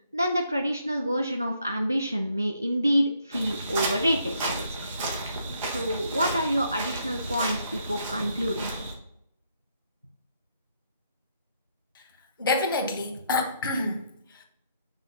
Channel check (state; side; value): inverted; both; correlation -0.72